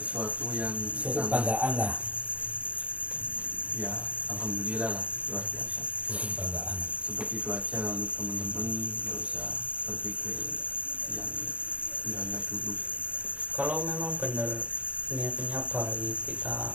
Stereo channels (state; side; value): late; left; 0.065 ms